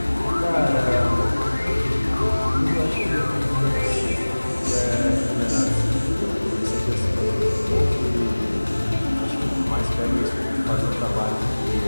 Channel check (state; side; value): inverted; both; correlation -1.00